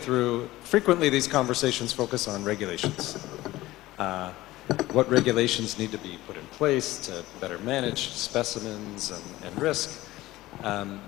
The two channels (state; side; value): quieter; right; 17.4 dB